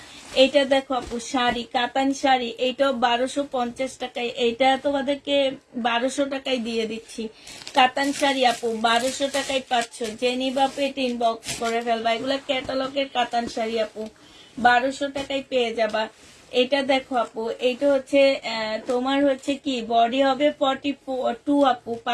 এইটা দেখো আপু শাড়ি, কাতান শাড়ি, এইটাও 1250 টাকায়। এইটা তোমাদেরকে 1200 টাকায় দিয়ে দিচ্ছি। কাতান শাড়ি আপু 1200 টাকায় পাচ্ছ। যে নিবা পেট ইনবক্স করে ফেলবা। এগুলো ক্যাটালগের কাতান শাড়ি আপু, 1200 টাকায় পেয়ে যাবা। এটা দেখো আপু, এইটা হচ্ছে তোমার হচ্ছে কি বডি হবে 42 আপু,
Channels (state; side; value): identical; both; correlation 1.00